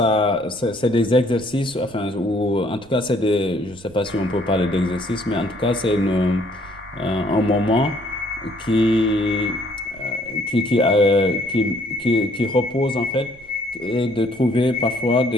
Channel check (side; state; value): right; noise; rumble, 24 dB below the sound